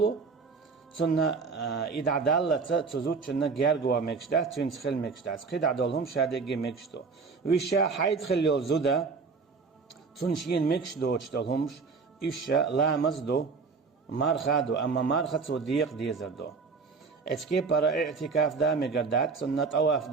سنة إذا عدالة تزود شنة جارجوا مكشدات تنسخل مكشدات قيد عدالهم شادريجي مكشدو ويشا حيد خليو زودا تنشين مكشدو تشتلهمش إيشا لا مزدو مارخادو أما مارخد وديق ديزردو اتكي برا اعتكاف دا مقردات سن طواف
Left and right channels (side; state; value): left; quieter; 4.8 dB